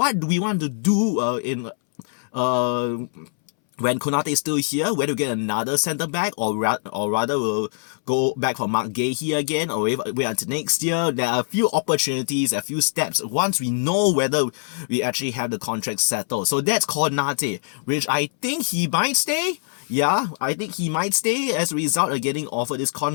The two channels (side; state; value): right; silent; 63 dB below the other